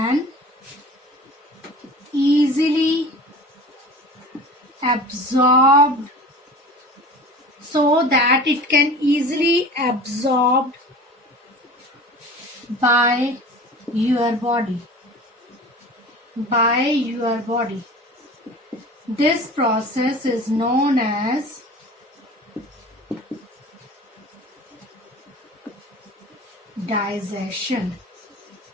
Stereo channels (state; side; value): normal; both; correlation 0.39